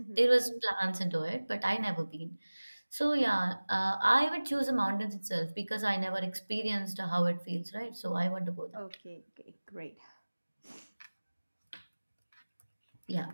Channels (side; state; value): both; inverted; correlation -1.00